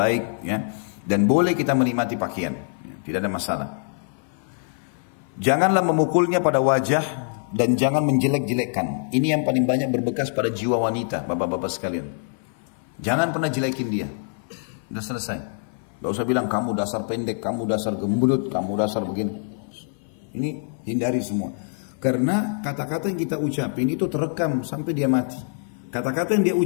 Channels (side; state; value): right; silent; 56 dB below the other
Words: ya. Dan boleh kita menikmati pakaian. Tidak ada masalah. Janganlah memukulnya pada wajah. Dan jangan menjelek-jelekkan. Ini yang paling banyak berbekas pada jiwa wanita, bapak-bapak sekalian. Jangan pernah jelekin dia. Udah selesai. Gak usah bilang kamu dasar pendek, kamu dasar gembut, kamu dasar begini. Ini hindari semua. Karena kata-kata yang kita ucapin itu terekam sampai dia mati. Kata-kata yang dia